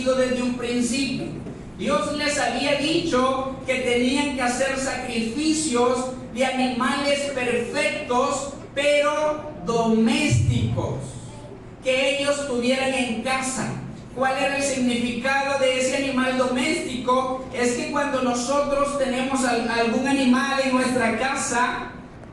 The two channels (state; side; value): identical; both; correlation 1.00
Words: desde un principio. Dios les había dicho que tenían que hacer sacrificios de animales perfectos, pero domésticos, que ellos tuvieran en casa. ¿Cuál era el significado de ese animal doméstico? Es que cuando nosotros tenemos algún animal en nuestra casa,